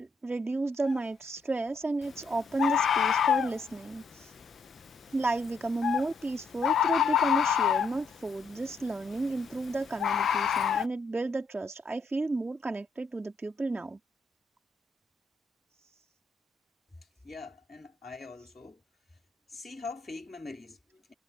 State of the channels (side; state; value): right; quieter; 3.1 dB